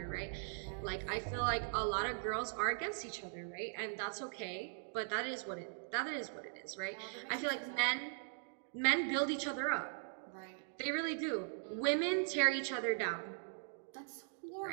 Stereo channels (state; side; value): silent; left; digital silence